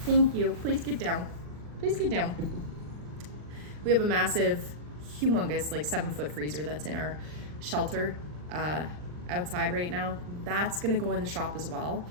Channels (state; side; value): late; left; 39 ms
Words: Thank you. Please get down. Please get down. We have a massive, humongous, 7-foot freezer that's in our shelter outside right now. That's gonna go in the shop as well.